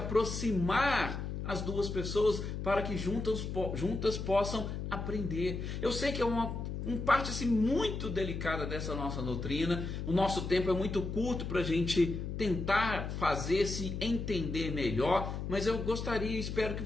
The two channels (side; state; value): left; noise; hum, 5 dB below the sound